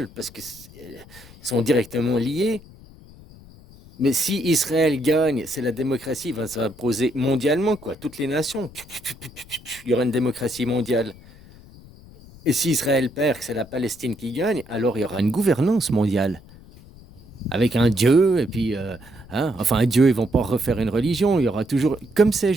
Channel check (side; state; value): left; noise; rumble, 21 dB below the sound